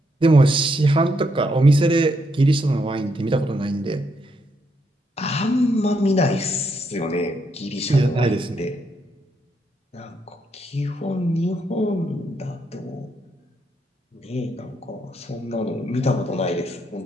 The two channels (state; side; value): normal; both; correlation 0.77